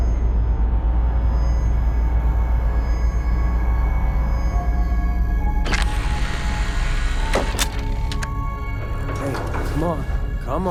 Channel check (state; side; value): identical; both; correlation 1.00